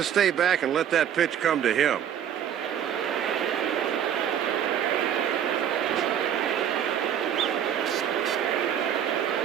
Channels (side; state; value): left; quieter; 9.4 dB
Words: stay back and let that pitch come to him.